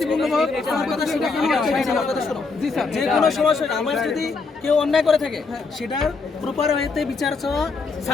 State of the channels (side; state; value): right; quieter; 4.3 dB